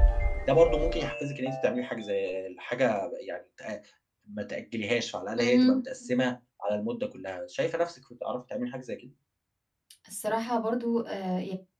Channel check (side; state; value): both; identical; correlation 1.00